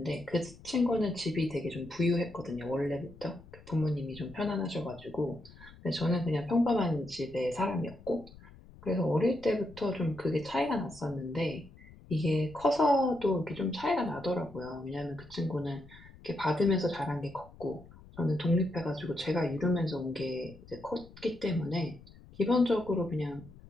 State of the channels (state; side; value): noise; left; rumble, 21 dB below the sound